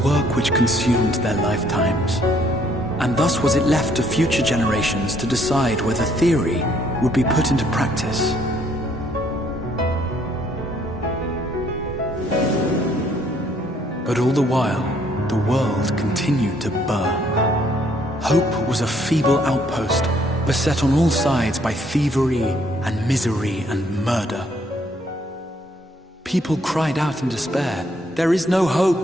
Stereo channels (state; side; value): normal; both; correlation 0.66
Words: which consumed their lifetimes, and thus was it left to future generations to decide whether theory would be put into practice. But all the while, the world continued to burn. Hope was a feeble outpost, beset on all sides by thievery and misery and murder. People cried out in despair, "There is no